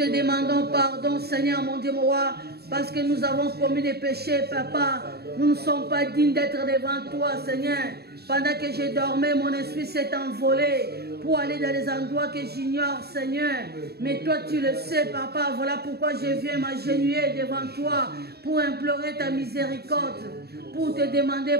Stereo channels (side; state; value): left; late; 0.47 ms